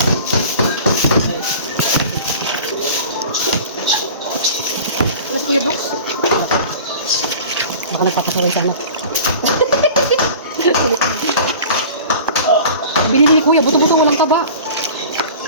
Ako nagpapasaway sa anak. Binili ni kuya, buto-buto, walang taba.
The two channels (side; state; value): both; inverted; correlation -0.40